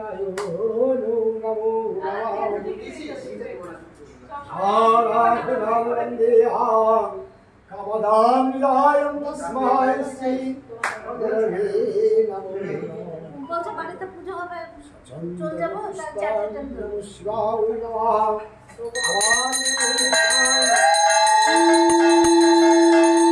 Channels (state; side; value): identical; both; correlation 1.00